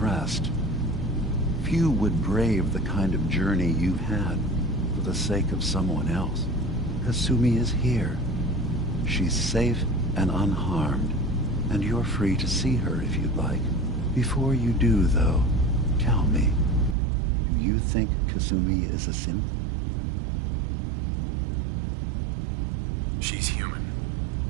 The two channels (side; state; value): left; drops out; at 16.9 s